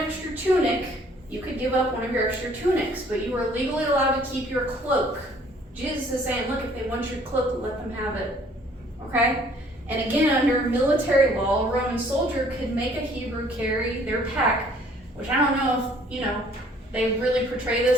tunic, you could give up one of your extra tunics, but you were legally allowed to keep your cloak. Jesus is saying, look, if they want your cloak, let them have it, okay? And again, under military law, a Roman soldier could make a Hebrew carry their pack, which I don't know if, they really portray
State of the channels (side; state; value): both; normal; correlation 0.58